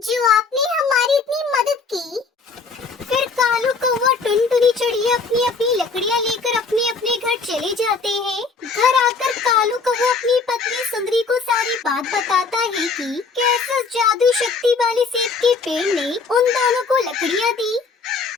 जो आपने हमारी इतनी मदद की। फिर कालू कौवा टुनटुनी चिड़िया अपनी अपनी लकड़ियाँ लेकर अपने अपने घर चले जाते हैं। घर आकर कालू कौवा अपनी पत्नी सुंदरी को सारी बात बताता है कि कैसे उस जादुई शक्ति वाले सेब के पेड़ ने उन दोनों को लकड़ियाँ दी।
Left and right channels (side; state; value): right; quieter; 4.5 dB